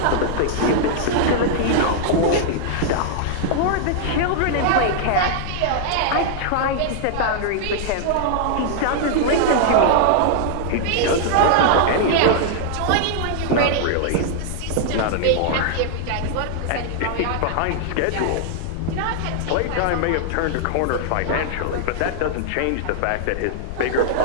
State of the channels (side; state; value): both; different; correlation -0.01